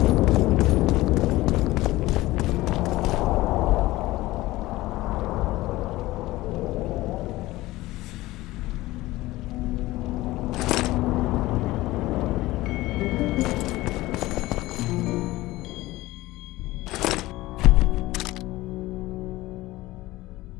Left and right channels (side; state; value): right; quieter; 18.2 dB